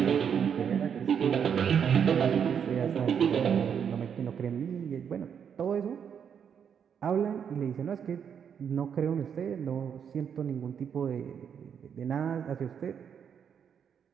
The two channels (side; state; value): left; quieter; 7.7 dB